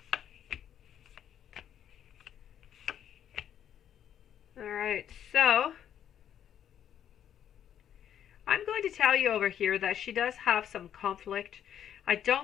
All right, so I'm going to tell you over here that she does have some conflict. I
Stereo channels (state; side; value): quieter; right; 9.8 dB